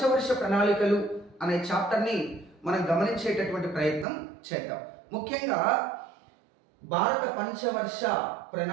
ప్రణాళికలు అనే చాప్టర్ని మనం గమనించేటటువంటి ప్రయత్నం చేద్దాం. ముఖ్యంగా భారత పంచవర్ష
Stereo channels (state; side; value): drops out; left; at 4.0 s